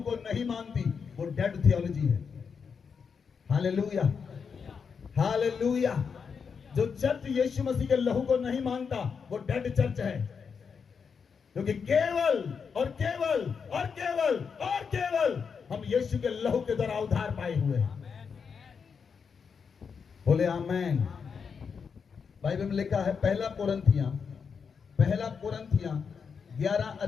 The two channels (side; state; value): right; quieter; 6.1 dB